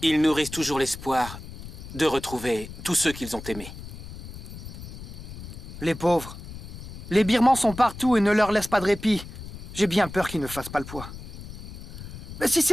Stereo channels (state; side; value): noise; left; rumble, 12 dB below the sound